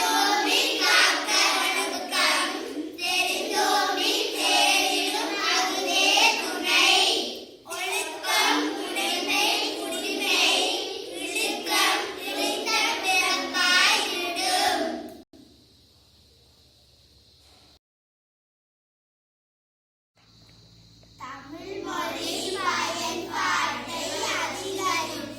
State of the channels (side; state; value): both; identical; correlation 1.00